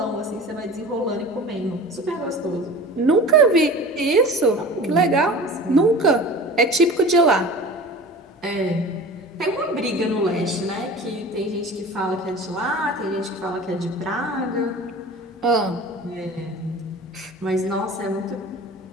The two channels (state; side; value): normal; both; correlation 0.38